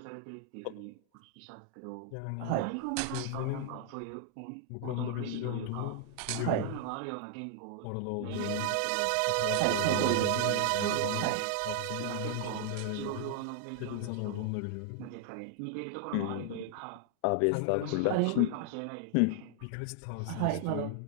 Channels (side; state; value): both; different; correlation 0.00